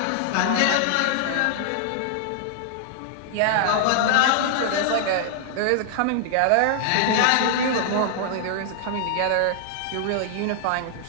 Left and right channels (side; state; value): both; different; correlation 0.00